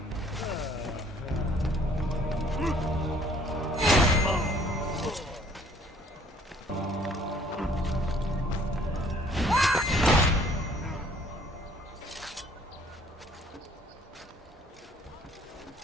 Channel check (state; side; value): normal; both; correlation 0.59